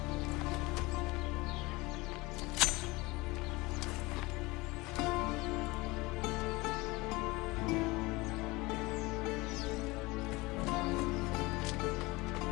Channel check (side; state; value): right; quieter; 22.6 dB